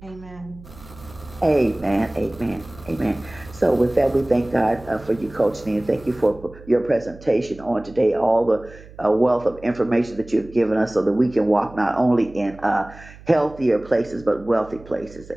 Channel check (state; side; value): noise; right; hum, 20 dB below the sound